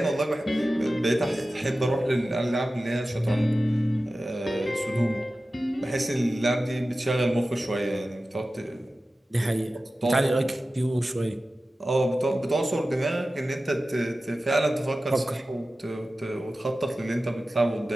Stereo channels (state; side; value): normal; both; correlation 0.95